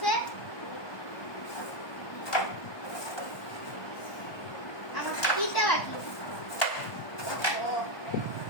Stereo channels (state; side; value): late; right; 1.2 ms